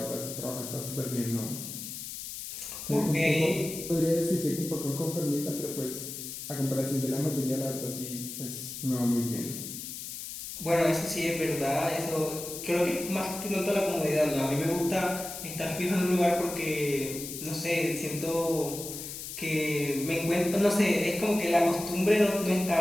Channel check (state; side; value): noise; left; hiss, 8 dB below the sound